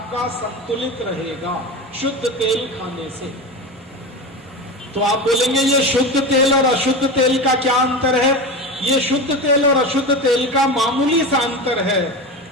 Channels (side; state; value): both; normal; correlation 0.25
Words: संतुलित रहेगा शुद्ध तेल खाने से। तो आप बोलेंगे ये शुद्ध तेल और अशुद्ध तेल का क्या अंतर है? ये शुद्ध तेल और अशुद्ध तेल का मामूली सा अंतर है,